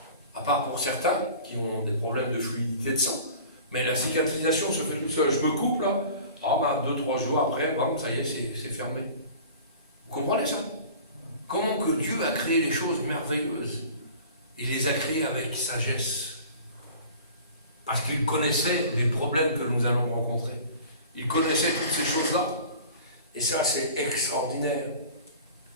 À part pour certains qui ont des problèmes de fluidité de sang. Mais la cicatrisation se fait tout seul. Je me coupe là, 2-3 jours après, ça y est, c'est fermé. Vous comprenez ça? Comment que Dieu a créé les choses merveilleuses? Il les a créées avec sagesse. Parce qu'il connaissait les problèmes que nous allons rencontrer. Il connaissait toutes ces choses-là. Et ça, c'est extraordinaire.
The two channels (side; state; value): both; inverted; correlation -0.43